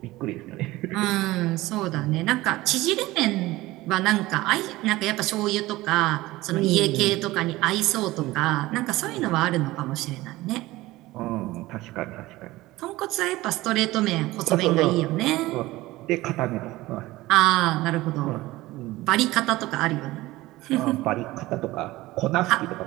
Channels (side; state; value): left; quieter; 18.5 dB